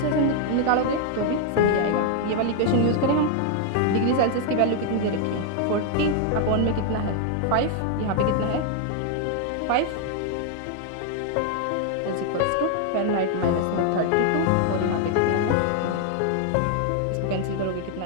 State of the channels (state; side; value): different; both; correlation 0.00